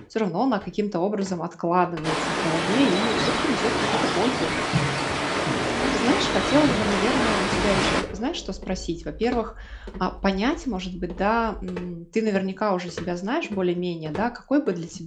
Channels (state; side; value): identical; both; correlation 1.00